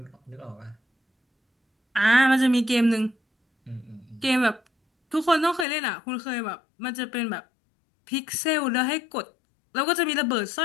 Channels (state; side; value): drops out; right; at 5.7 s